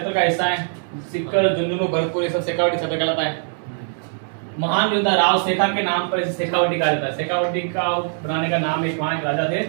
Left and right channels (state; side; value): silent; left; digital silence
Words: का हिस्सा है। सिक्कर, झुंझुनू, भरतपुर ये सब शेखावटी क्षेत्र कहलाता है। महान योद्धा राव शेखा के नाम पर इसे शेखावटी कहा जाता है। शेखावटी का बनाने का नाम एक वहां राजा थे